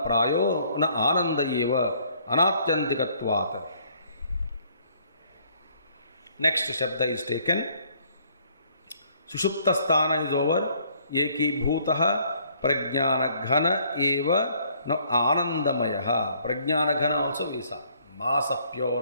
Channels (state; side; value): inverted; both; correlation -0.63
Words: Prayo Na Ananda Yeva Anatyantikatvat. Next Shabda is taken. Sushupta Sthana is over. Eki Bhutaha Prajnana Ghana Eva No Anandamayaha. Prajnana Ghana also we saw. Mass of